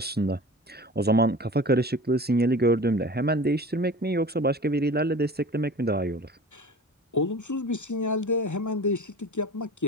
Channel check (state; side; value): normal; both; correlation 0.38